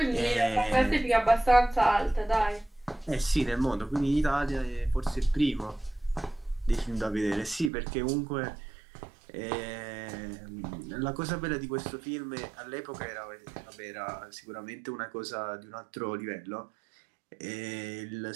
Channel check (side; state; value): left; drops out; at 7.7 s